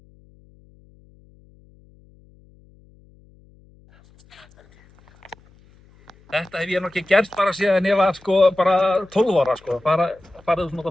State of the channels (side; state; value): left; noise; hum, 29 dB below the sound